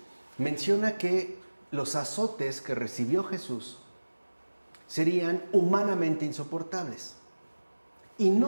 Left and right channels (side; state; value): both; inverted; correlation -1.00